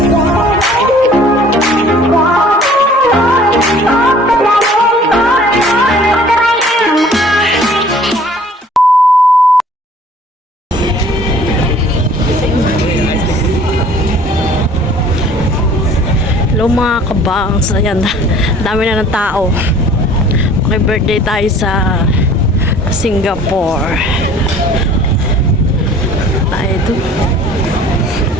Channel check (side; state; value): both; normal; correlation 0.52